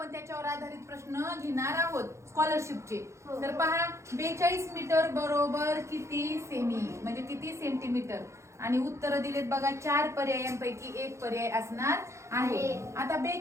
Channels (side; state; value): left; late; 0.14 ms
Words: त्याच्यावर आधारित प्रश्न घेणार आहोत स्कॉलरशिपचे. तर पहा 42 मीटर बरोबर किती सेमी म्हणजे किती सेंटीमीटर आणि उत्तर दिलेत बघा. 4 पर्यायांपैकी एक पर्याय असणार आहे. आता